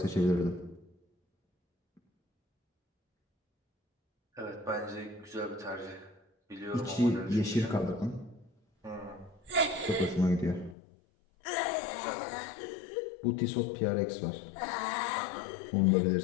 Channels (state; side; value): drops out; right; at 10.8 s